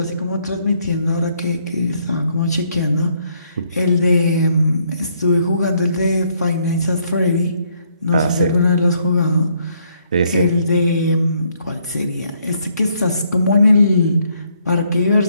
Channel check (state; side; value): inverted; both; correlation -0.70